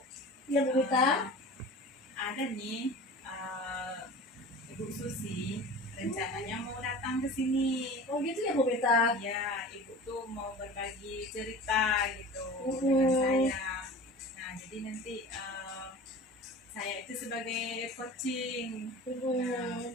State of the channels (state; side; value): normal; both; correlation 0.37